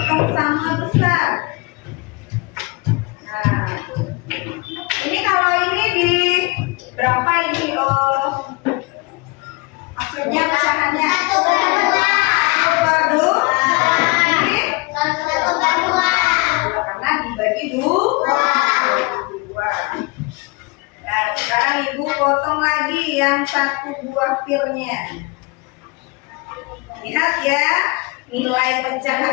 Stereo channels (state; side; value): quieter; right; 26.3 dB